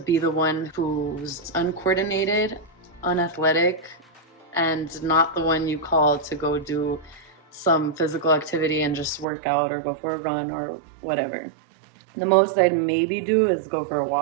the one who's uncoordinated, unathletic, and not the one you call to go do some physical activity and just work out or go for a run or whatever. The most I'd maybe do is go for a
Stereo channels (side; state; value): left; drops out; at 9.2 s